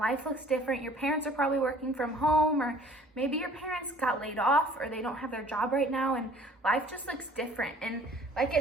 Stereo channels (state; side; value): normal; both; correlation 0.52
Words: looks different. Your parents are probably working from home, or maybe your parents got laid off or they don't have their job right now, and life just looks different. And like